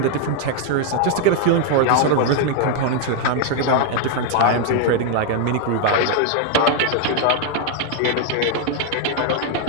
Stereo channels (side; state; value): both; different; correlation 0.00